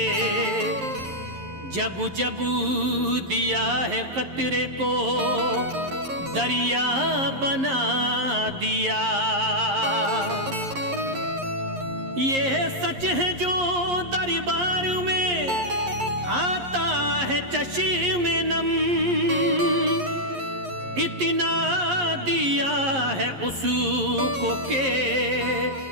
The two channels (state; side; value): late; left; 11 ms